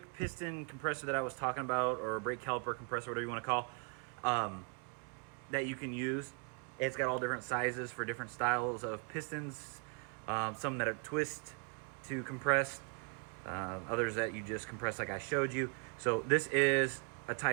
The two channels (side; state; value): left; quieter; 35.6 dB